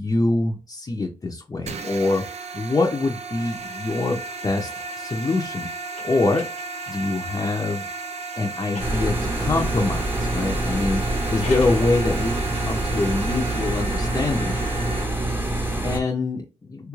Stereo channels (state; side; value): normal; both; correlation 0.79